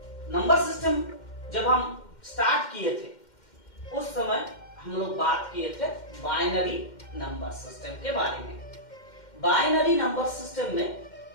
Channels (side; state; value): right; late; 2.1 ms